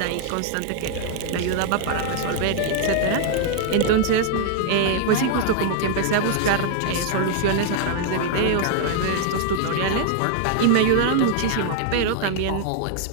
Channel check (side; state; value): both; different; correlation 0.00